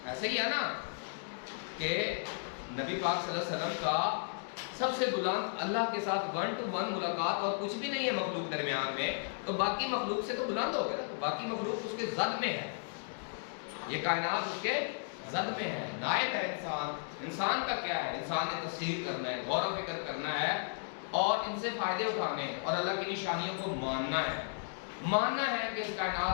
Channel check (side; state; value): right; silent; digital silence